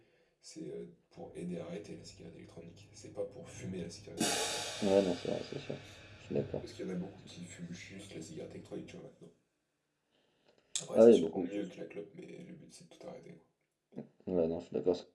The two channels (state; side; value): identical; both; correlation 1.00